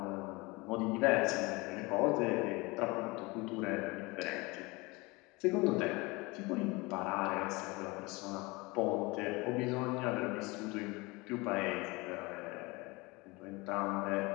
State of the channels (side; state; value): right; quieter; 24.6 dB